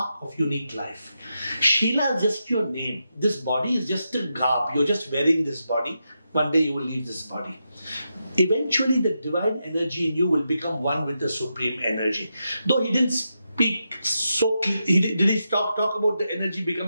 of unique life. Sheela is just your name. This body is just a garb. You're just wearing this body. One day you will leave this body. Eventually the divine energy in you will become one with the supreme energy. Though he didn't speak so clearly, did he talk about the energy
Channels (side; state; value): both; inverted; correlation -0.86